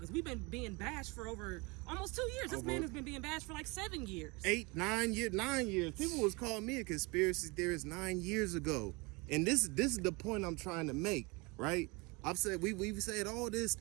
we've been being bashed for over almost 2 years. This man has been being bashed for like 7 years. 8, 9 years, 9 years. People was calling me a conspiracy theorist 9 years ago. And this is the point I'm trying to make, right? I've said, we've said all this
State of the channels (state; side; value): quieter; left; 26.8 dB